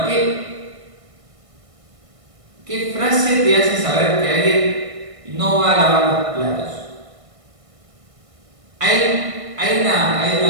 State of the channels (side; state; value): left; late; 1.6 ms